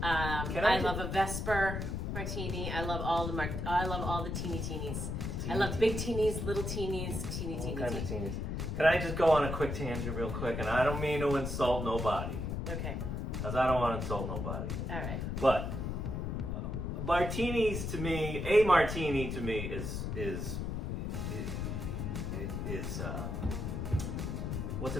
I love a Vesper martini, I love all the I love all the teeny teenies. I love big teenies, little teenies, teeny teeny All kinds of teenies. Can I just go on a quick tangent real quick? And I don't mean to insult nobody. Okay. Because I don't want to insult nobody. All right. But martinis to me, a martini to me is what's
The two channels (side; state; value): left; noise; rumble, 3 dB below the sound